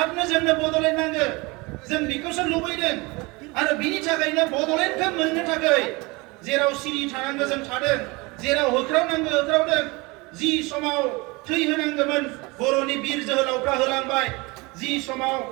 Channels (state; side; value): quieter; left; 25.3 dB